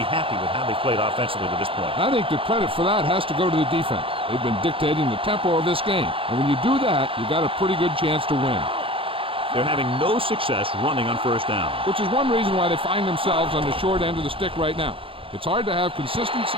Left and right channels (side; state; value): left; late; 0.26 ms